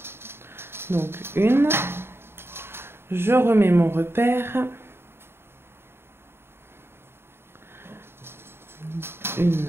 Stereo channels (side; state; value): left; late; 0.11 ms